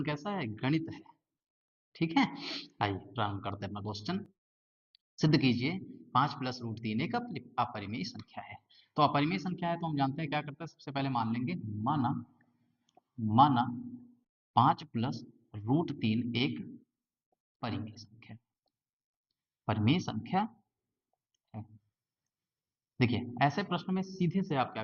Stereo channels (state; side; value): identical; both; correlation 1.00